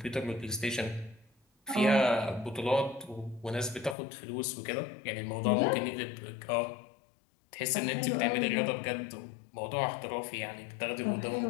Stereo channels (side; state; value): right; drops out; at 4.0 s